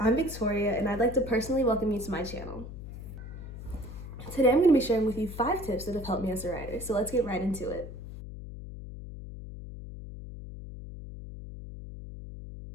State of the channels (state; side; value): noise; left; hum, 11 dB below the sound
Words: I'm Victoria and I'd like to personally welcome you to my channel. Today I'm going to be sharing with you 5 tips that have helped me as a writer, so let's get right into it.